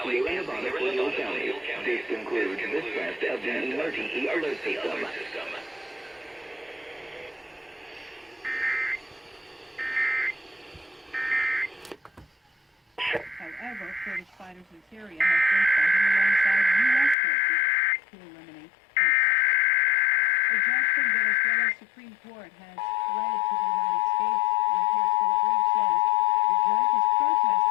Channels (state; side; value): drops out; right; at 17.2 s